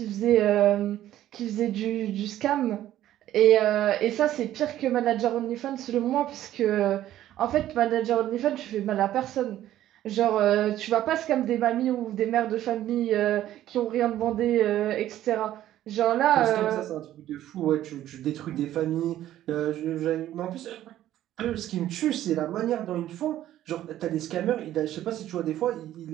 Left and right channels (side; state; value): left; quieter; 12.9 dB